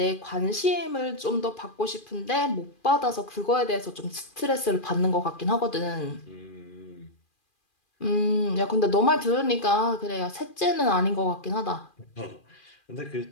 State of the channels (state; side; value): late; right; 2.4 ms